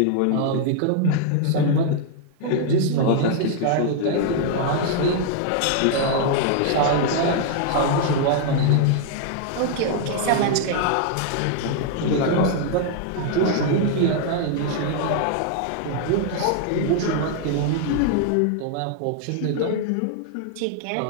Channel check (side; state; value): both; different; correlation 0.00